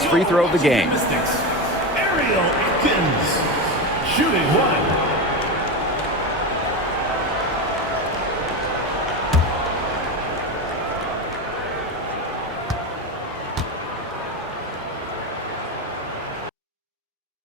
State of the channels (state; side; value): normal; both; correlation 0.18